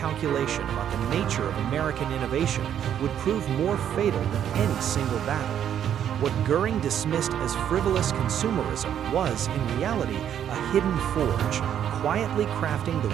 about the nature of American innovation would prove more fatal than any single battle. What Goering dismissed as frivolous consumerism was, in reality, a hidden forge, quietly crafting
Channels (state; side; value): quieter; left; 9.7 dB